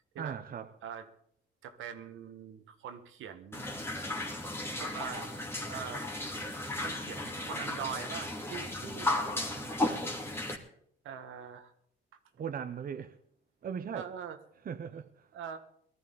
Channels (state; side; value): normal; both; correlation 0.34